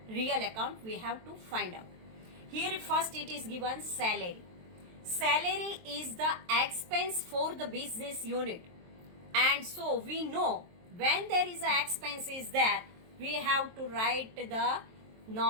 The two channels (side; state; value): left; late; 23 ms